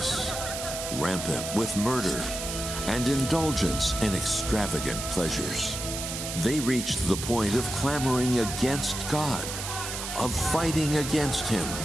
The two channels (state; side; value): noise; right; hiss, 6 dB below the sound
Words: rampant with murder, and indulgence in extravagant pleasures. They reached the point of clamoring against God, of fighting against him,